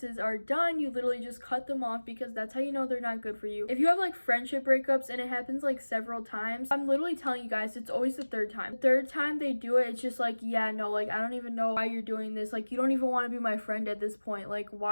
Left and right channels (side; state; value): both; inverted; correlation -1.00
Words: are done, you literally just cut them off because that's how you know they're not good for you. If you have like friendship breakups and it happens like several times, I'm literally telling you guys, it's always the 3rd time. The 3rd time they do it, it's just like, yeah, no, like, I don't even know why you're doing this. Like, you don't even want to be my friend at this point. Like,